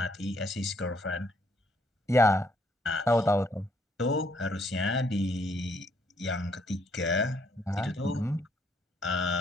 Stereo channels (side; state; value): both; normal; correlation 0.69